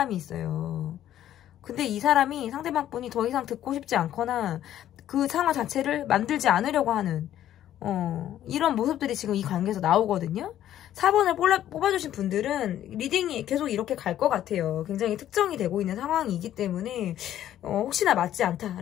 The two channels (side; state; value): right; quieter; 11.8 dB